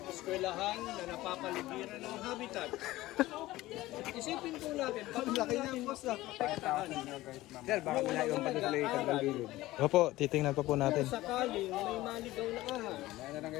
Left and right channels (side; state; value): right; quieter; 17.3 dB